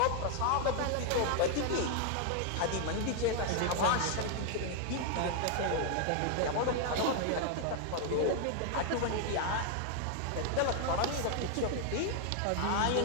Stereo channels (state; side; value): different; both; correlation 0.00